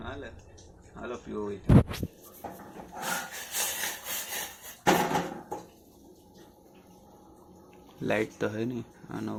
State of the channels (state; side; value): identical; both; correlation 1.00